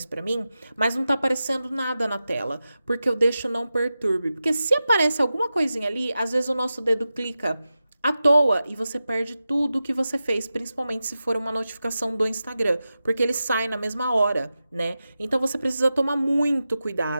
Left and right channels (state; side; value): inverted; both; correlation -0.92